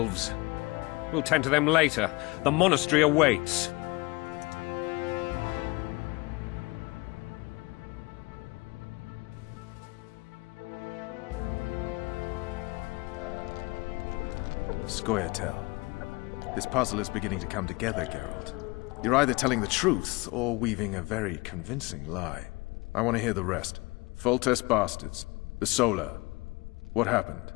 We'll tend to them later. The monastery awaits. Scoia'tael. This puzzle is beginning to come together, Geralt. You're either telling the truth or weaving a very convincing lie. I want to hear the rest. Foltest bastards. The Solar. What happened?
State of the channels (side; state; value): right; quieter; 24.5 dB